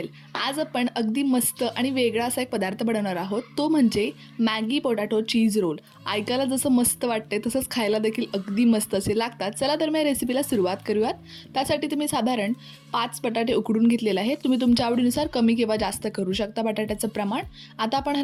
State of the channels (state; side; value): identical; both; correlation 1.00